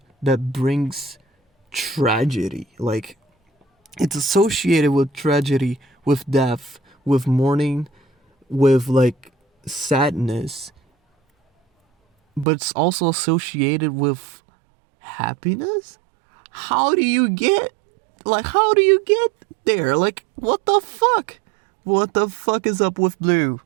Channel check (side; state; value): left; drops out; at 12.5 s